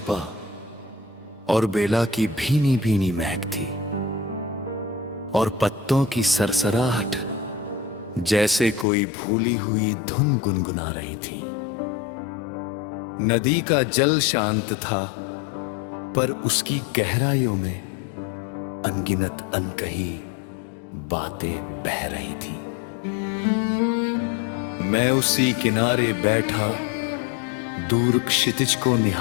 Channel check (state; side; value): drops out; right; at 8.8 s